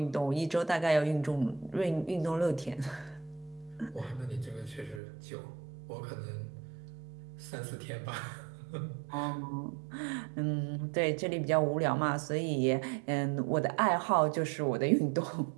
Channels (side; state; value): left; drops out; at 5.0 s